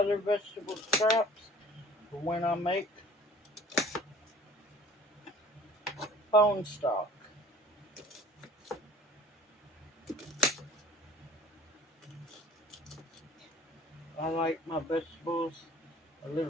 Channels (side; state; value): both; normal; correlation 0.49